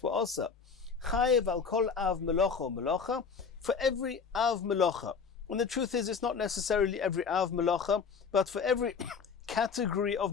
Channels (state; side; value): quieter; right; 5.7 dB